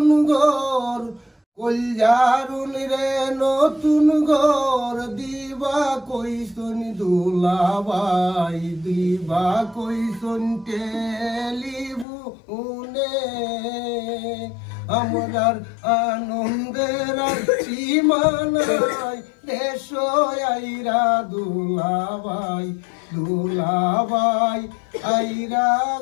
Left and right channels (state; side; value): drops out; right; at 12.1 s